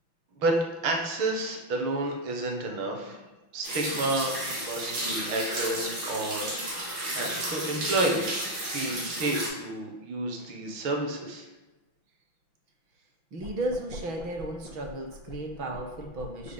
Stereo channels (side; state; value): left; late; 5.9 ms